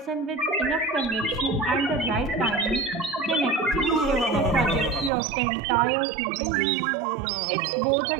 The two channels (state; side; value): drops out; left; at 5.1 s